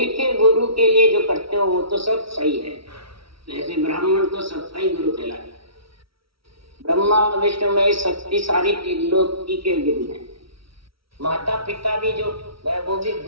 के गुरु के लिए जो करते हो वो तो सब सही है। जैसे ब्राह्मण तो सबका ही गुरु कहलाता है। ब्रह्मा विष्णु में शक्ति सारी त्रिलोकी के गुरु हैं। माता पिता भी जो है वो भी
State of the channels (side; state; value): left; late; 0.75 ms